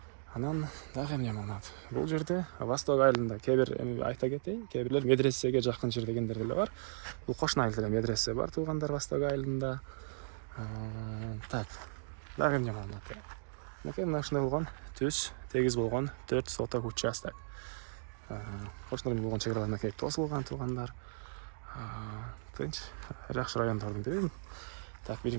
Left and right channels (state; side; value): silent; left; digital silence